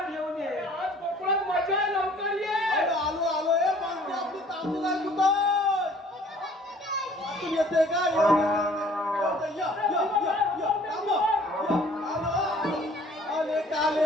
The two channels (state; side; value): normal; both; correlation 0.54